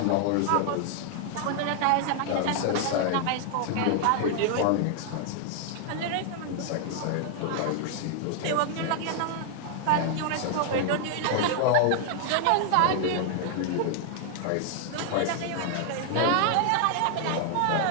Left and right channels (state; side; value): different; both; correlation 0.00